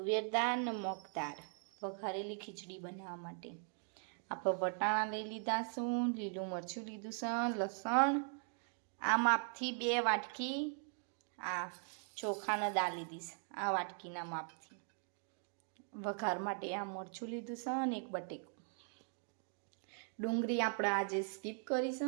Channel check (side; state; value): left; silent; 51 dB below the other